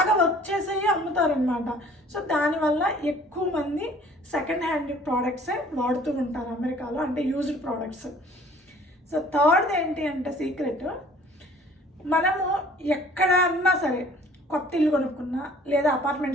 వర్క్ చేసేవి అమ్ముతారనమాట. సో దానివల్ల ఎక్కువ మంది సెకండ్ హ్యాండ్ ప్రోడక్ట్సే వాడుతూ ఉంటారు అమెరికాలో, అంటే యూజ్డ్ ప్రోడక్ట్స్. సో థర్డ్ ఏంటి అంటే సీక్రెట్, మనము ఎక్కడన్నా సరే కొత్త ఇల్లు కొనుక్కున్నా, లేదా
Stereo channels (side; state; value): both; normal; correlation 0.53